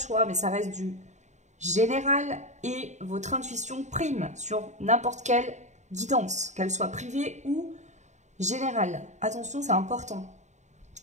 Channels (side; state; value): left; late; 0.34 ms